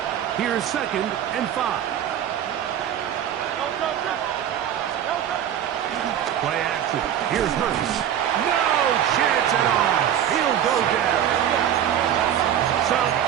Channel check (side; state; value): left; quieter; 10.1 dB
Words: Here's 2nd and 5. Play action. Here's Hurts. No chance at all. He'll go down. So